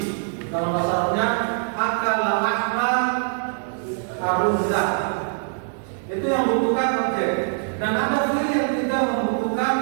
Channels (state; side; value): silent; left; digital silence